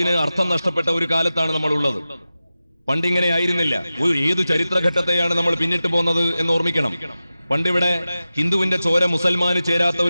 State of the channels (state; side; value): inverted; both; correlation -0.94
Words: അർത്ഥം നഷ്ടപ്പെട്ട ഒരു കാലത്താണ് നമ്മൾ ഉള്ളത്. പണ്ടിങ്ങനെ ആയിരുന്നില്ല. ഏതു ചരിത്രഘട്ടത്തെയാണ് നമ്മൾ പിന്നിട്ട് പോകുന്നത് എന്ന് ഓർമ്മിക്കണം. പണ്ടിവിടെ ഹിന്ദുവിന്റെ ചോര മുസൽമാന് ചേരാത്ത